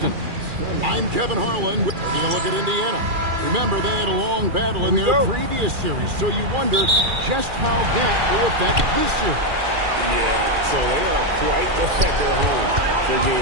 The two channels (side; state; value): left; late; 2.4 ms